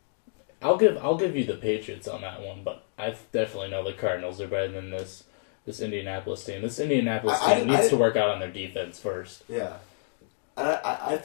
I'll give you the Patriots on that one, but I definitely know the Cardinals are better than this Indianapolis team. This Indianapolis team needs to work out on their defense first. Yeah, and I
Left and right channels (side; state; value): right; silent; digital silence